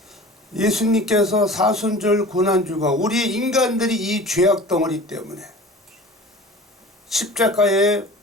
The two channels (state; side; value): normal; both; correlation 0.40